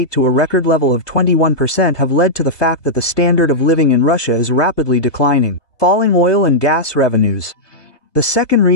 to a record level of 21% have led to the fact that the standard of living in Russia is rapidly declining. Falling oil and gas revenues. The second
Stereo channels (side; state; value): right; late; 1.2 ms